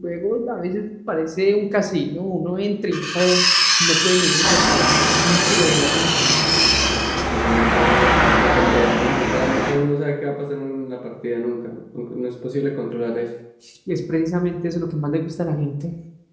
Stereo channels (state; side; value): identical; both; correlation 1.00